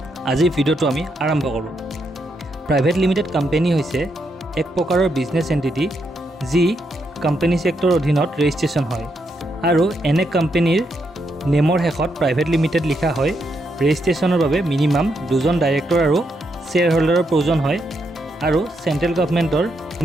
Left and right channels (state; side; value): normal; both; correlation 0.80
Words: আজিৰ ভিডিঅ'টো আমি আৰম্ভ কৰোঁ। প্ৰাইভেট লিমিটেড কোম্পানী হৈছে এক প্ৰকাৰৰ বিজনেছ এণ্টিটি যি কোম্পানী ছেক্টৰৰ অধীনত ৰেজিষ্ট্ৰেশ্যন হয় আৰু এনে কোম্পানীৰ নেমৰ শেষত প্ৰাইভেট লিমিটেড লিখা হয়। ৰেজিষ্ট্ৰেশ্যনৰ বাবে মিনিমাম 2জন ডাইৰেক্টৰ আৰু শ্বেয়াৰ হোল্ডাৰৰ প্ৰয়োজন হয় আৰু চেণ্ট্ৰেল গভৰ্ণমেণ্টৰ